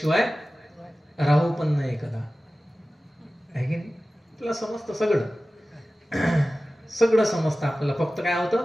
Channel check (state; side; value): normal; both; correlation 0.96